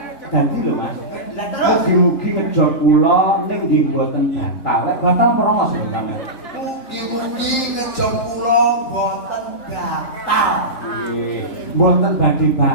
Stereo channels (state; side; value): late; right; 3.9 ms